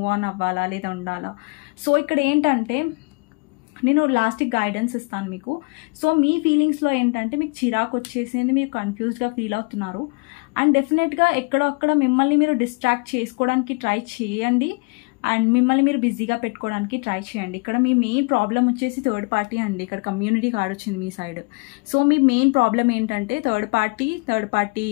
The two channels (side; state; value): right; quieter; 31.4 dB